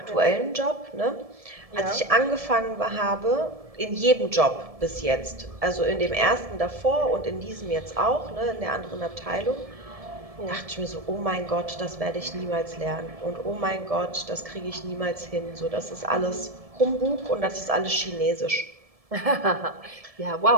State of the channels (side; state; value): left; late; 1.7 ms